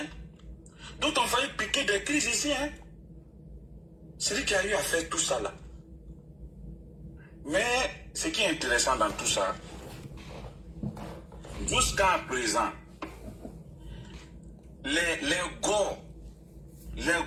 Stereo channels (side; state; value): both; identical; correlation 1.00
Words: D'autres ont failli piquer des crises ici, hein. C'est lui qui a eu à faire tout ça là. Mais ce qui est intéressant dans tout ça, jusqu'à présent, les